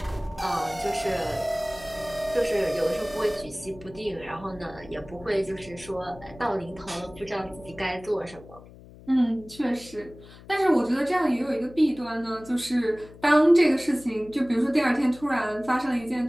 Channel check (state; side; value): noise; left; hum, 20 dB below the sound